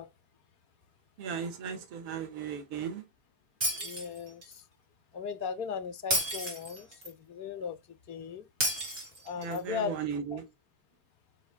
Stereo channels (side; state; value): left; late; 5.0 ms